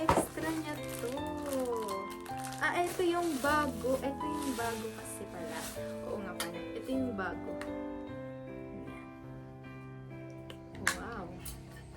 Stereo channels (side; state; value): both; identical; correlation 1.00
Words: niya to. Ito yung bago. Ito yung bago kasi pala. Oo nga pala. Ito yung bago. Wow.